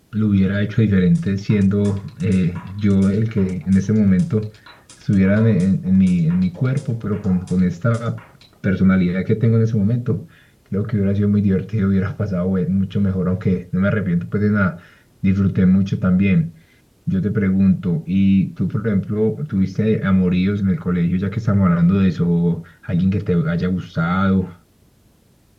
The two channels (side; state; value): both; identical; correlation 1.00